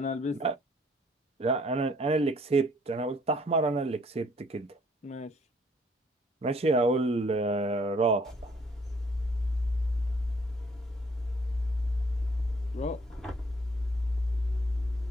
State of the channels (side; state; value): both; normal; correlation 0.62